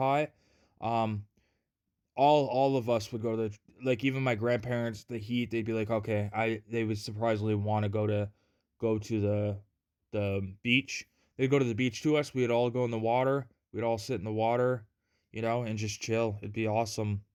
Um, all of us would go to like even my grandparents, the heat, they'd be like, okay, they would surprisingly want to go to the beach. They'd go to the beach to us. We'd all go in the water. We'd all sit in the water, and just chill. It'd be awesome.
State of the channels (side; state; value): both; identical; correlation 1.00